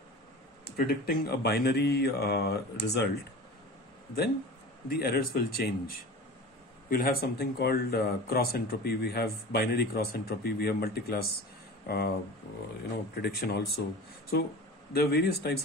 predicting a binary result, then the errors will change. We'll have something called cross entropy. We have binary cross entropy. We have multi-class prediction also. So there are various types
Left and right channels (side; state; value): both; normal; correlation 0.35